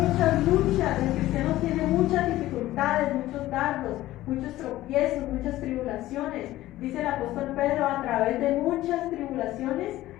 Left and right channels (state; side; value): quieter; right; 15.7 dB